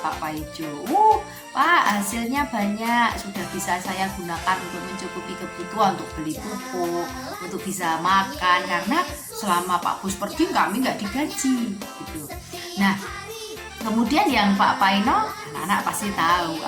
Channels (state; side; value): identical; both; correlation 1.00